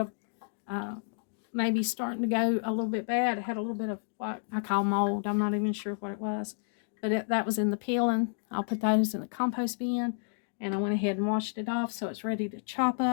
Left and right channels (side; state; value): right; silent; digital silence